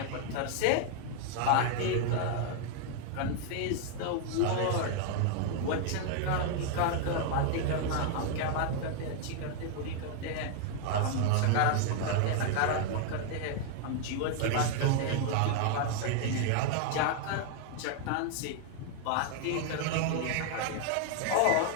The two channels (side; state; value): both; different; correlation 0.00